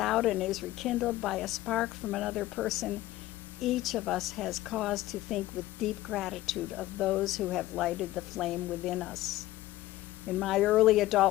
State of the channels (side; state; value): right; quieter; 16.1 dB